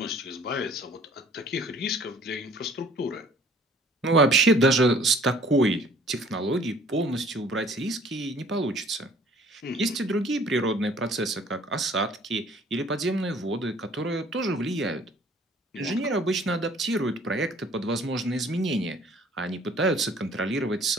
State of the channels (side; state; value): both; normal; correlation 0.54